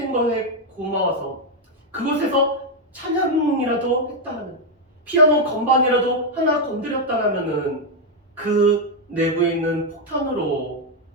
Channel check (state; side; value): normal; both; correlation 0.01